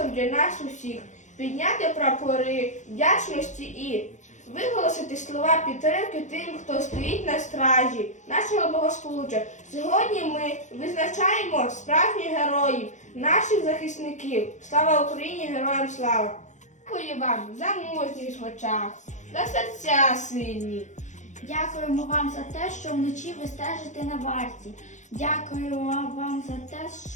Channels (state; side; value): late; right; 0.35 ms